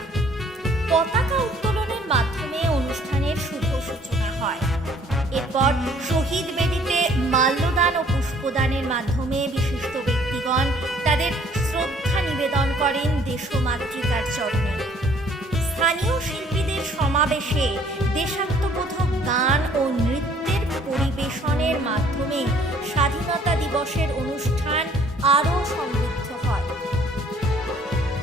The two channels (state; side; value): normal; both; correlation 0.59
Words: পতাকা উত্তোলনের মাধ্যমে অনুষ্ঠানের শুভ সূচনা হয়। এরপর শহীদ বেদিতে মাল্যদান ও পুষ্পদানের মাধ্যমে বিশিষ্ট ব্যক্তিগণ তাদের শ্রদ্ধা নিবেদন করেন দেশমাতৃকার চরণে। স্থানীয় শিল্পীদের সমাবেশে দেশাত্মবোধক গান ও নৃত্যের পরিবেশনের মাধ্যমে স্বাধীনতা দিবসের অনুষ্ঠান আরও সমৃদ্ধ হয়।